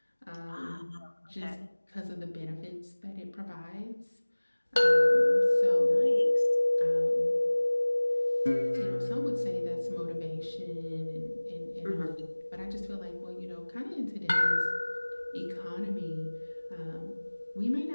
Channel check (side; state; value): both; inverted; correlation -1.00